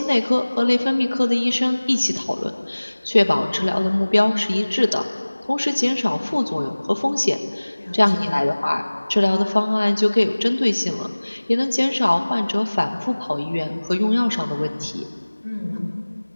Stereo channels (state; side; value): inverted; both; correlation -1.00